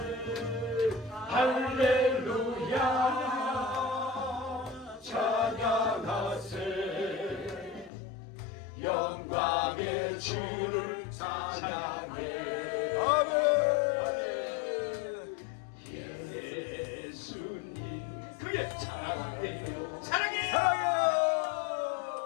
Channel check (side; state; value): right; drops out; at 7.9 s